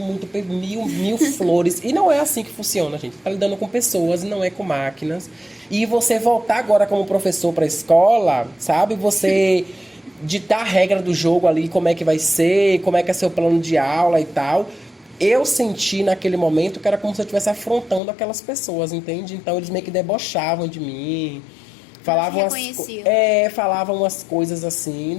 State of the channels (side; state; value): right; drops out; at 18.0 s